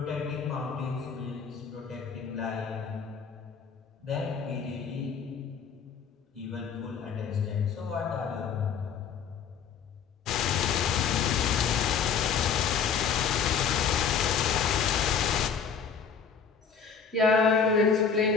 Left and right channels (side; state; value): right; quieter; 6.5 dB